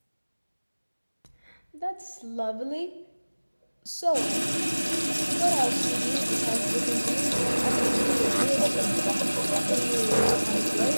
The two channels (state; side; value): inverted; both; correlation -1.00